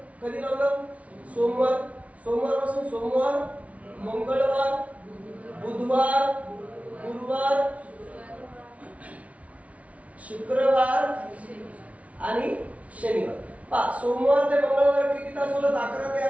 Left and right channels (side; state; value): left; late; 0.066 ms